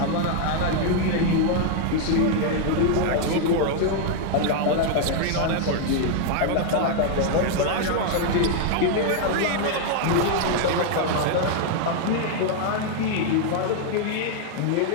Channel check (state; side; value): different; both; correlation 0.00